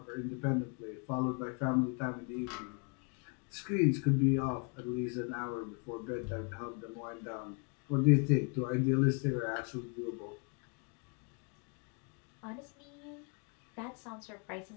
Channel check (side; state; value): right; quieter; 36.8 dB